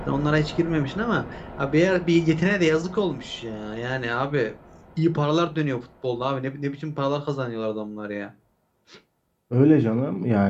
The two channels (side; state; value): both; identical; correlation 1.00